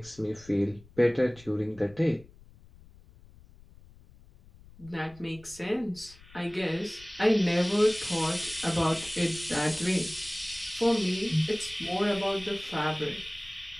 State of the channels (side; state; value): left; noise; rumble, 23 dB below the sound